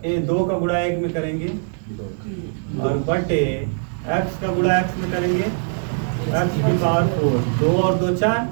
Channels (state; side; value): silent; left; digital silence